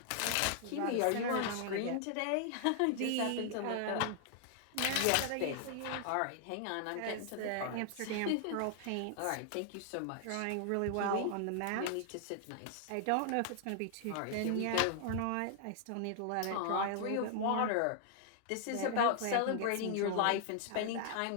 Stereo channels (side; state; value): both; different; correlation 0.00